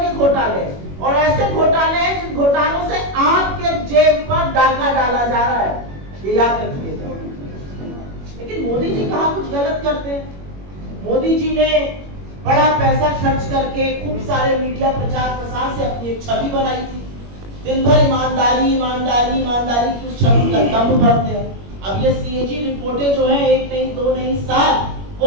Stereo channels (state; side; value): late; left; 21 ms